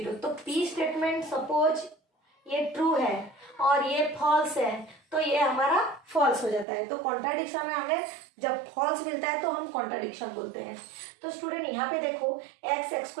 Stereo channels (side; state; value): left; drops out; at 6.7 s